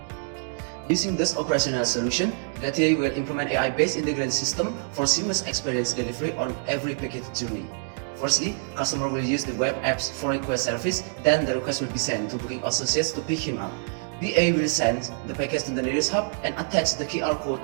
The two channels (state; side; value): silent; left; digital silence